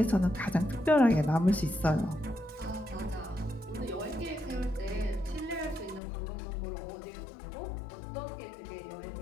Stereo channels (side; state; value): right; drops out; at 6.0 s